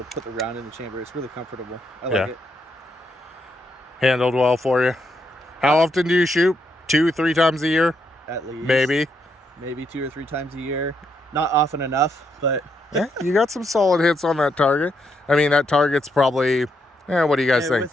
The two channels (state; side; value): normal; both; correlation 0.78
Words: put the round in the chamber. It's really comfortable. I Yeah. like it. Handled well for you. How often do you shoot? 2-3 times a year? At least. Maybe 2 or 3 times a year. Not often enough, but yeah, you got some solid hits on that target. I mean, that target's probably, what do you guys think?